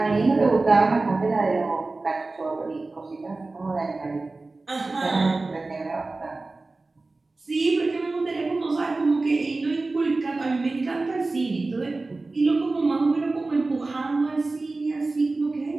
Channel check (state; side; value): quieter; left; 3.4 dB